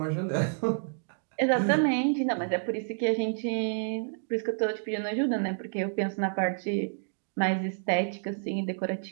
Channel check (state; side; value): silent; left; digital silence